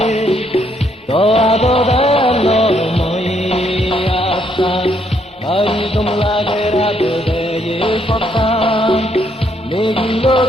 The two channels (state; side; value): normal; both; correlation 0.72